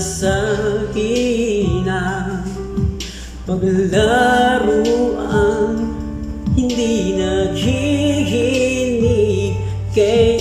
hina? Paglaruan hindi naghihinig,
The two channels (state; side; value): identical; both; correlation 1.00